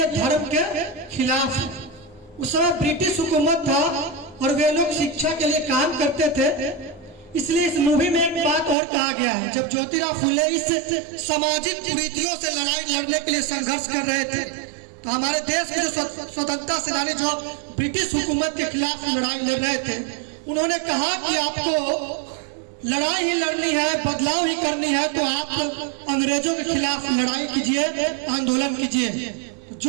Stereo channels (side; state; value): left; drops out; at 8.8 s